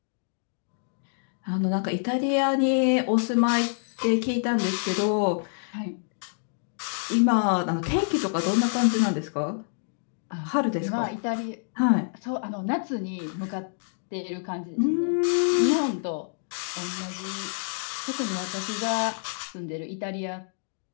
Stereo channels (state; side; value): silent; right; digital silence